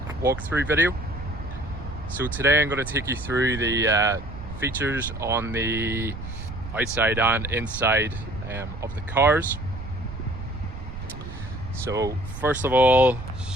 walkthrough video. So today I'm going to take you through the features on the outside and inside of the cars. So first of all,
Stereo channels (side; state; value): right; noise; rumble, 10 dB below the sound